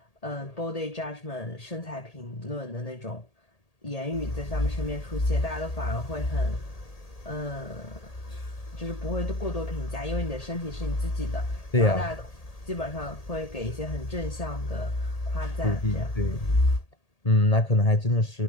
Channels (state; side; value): late; right; 1.8 ms